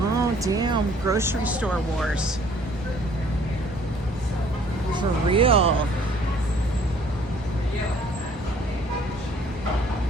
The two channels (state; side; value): normal; both; correlation 0.58